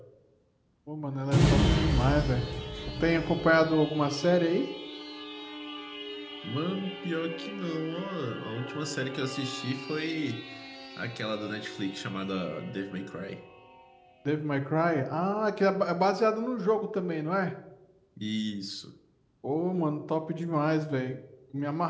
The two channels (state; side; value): identical; both; correlation 1.00